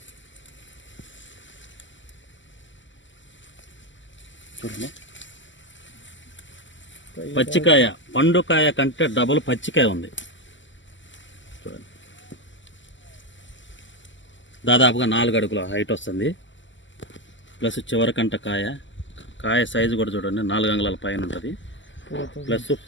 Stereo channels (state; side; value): late; right; 0.54 ms